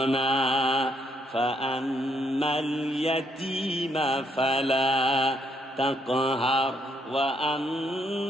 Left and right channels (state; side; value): normal; both; correlation 0.73